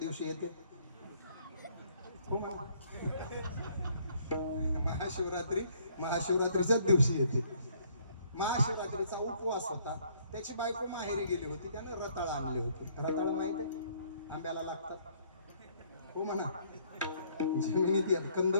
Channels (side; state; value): both; inverted; correlation -0.64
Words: येते. महाशिवरात्रीच्याच दिवशी येते. महाशिवरात्रीचा उपवास होता. त्याची बायको माहेरी गेली होती, त्यानं रताळ आणले होते. रताळ माहित आहे, आंब्याला लागतात हो म्हणा, जमिनीत येत